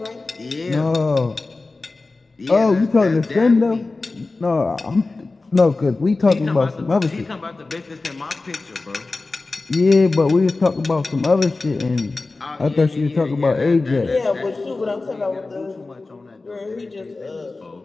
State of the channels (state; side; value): quieter; right; 3.5 dB